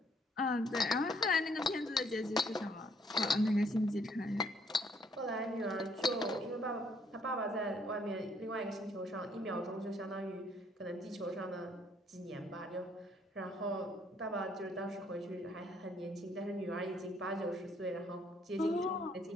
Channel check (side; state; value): both; normal; correlation 0.67